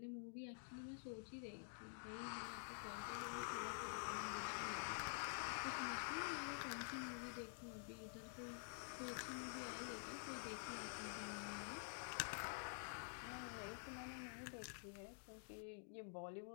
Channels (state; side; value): silent; right; digital silence